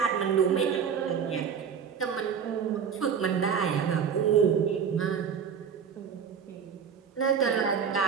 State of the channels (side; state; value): left; quieter; 7.0 dB